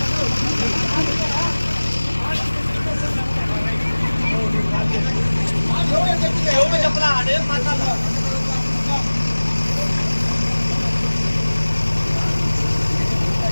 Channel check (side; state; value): both; inverted; correlation -1.00